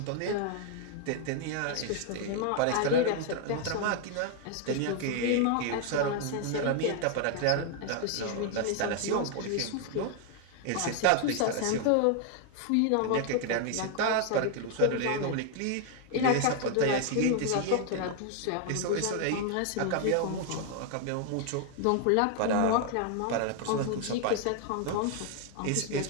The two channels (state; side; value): different; both; correlation 0.00